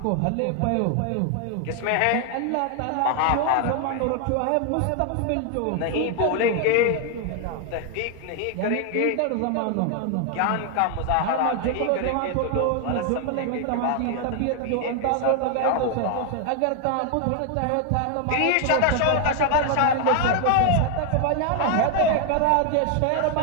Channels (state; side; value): different; both; correlation 0.00